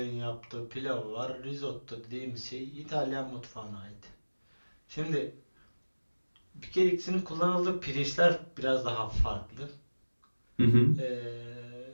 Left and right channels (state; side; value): inverted; both; correlation -1.00